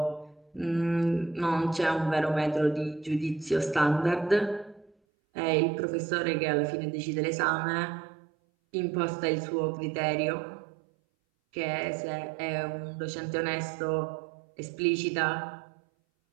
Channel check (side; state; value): left; drops out; at 4.9 s